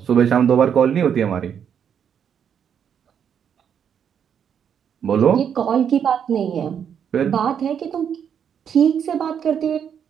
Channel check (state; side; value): quieter; left; 8.1 dB